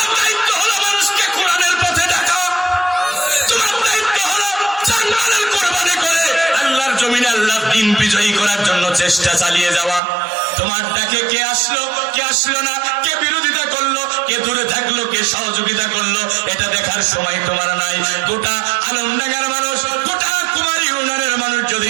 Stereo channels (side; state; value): left; drops out; at 10.0 s